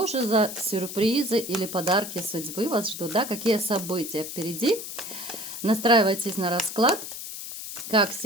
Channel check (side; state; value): left; noise; hiss, 9 dB below the sound